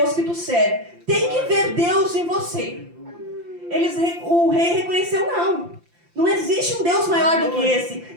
que tu serve. Tem que ver Deus em você. O rei reconheceu, não existe um Deus maior do que esse.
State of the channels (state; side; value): late; left; 5.8 ms